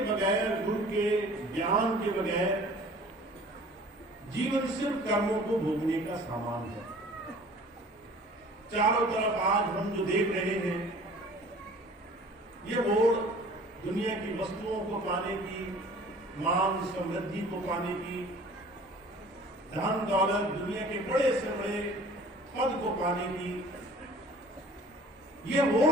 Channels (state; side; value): normal; both; correlation 0.49